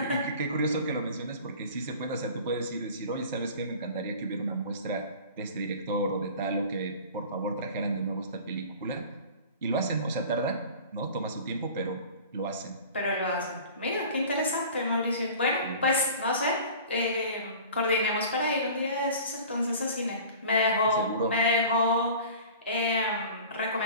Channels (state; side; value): inverted; both; correlation -0.42